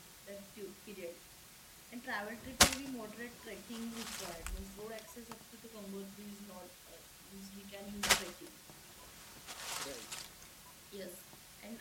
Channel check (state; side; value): identical; both; correlation 1.00